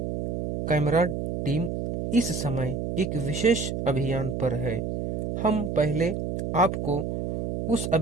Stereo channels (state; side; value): noise; right; hum, 2 dB below the sound